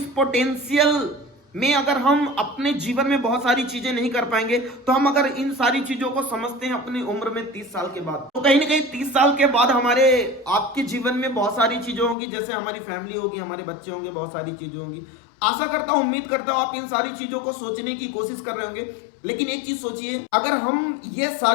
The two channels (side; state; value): right; drops out; at 12.2 s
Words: पोटेंशियल में अगर हम अपने जीवन में बहुत सारी चीजें नहीं कर पाएंगे, तो हम अगर इन सारी चीजों को समझते हैं अपनी उम्र में 30 साल के बाद, तो कहीं ना कहीं 30 साल के बाद हमारे आपके जीवन में बहुत सारी चीजें होंगी, जैसे हमारी फैमिली होगी, हमारे बच्चे होंगे, बहुत सारी चीजें होंगी। आशा करता हूं, उम्मीद करता हूं आप इन सारी चीजों को सोचने की कोशिश कर रहे होंगे। लेकिन एक चीज सोचिए, अगर हम ये